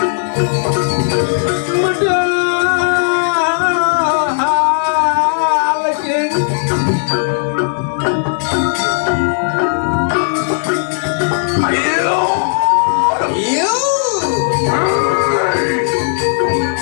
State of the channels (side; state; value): right; silent; digital silence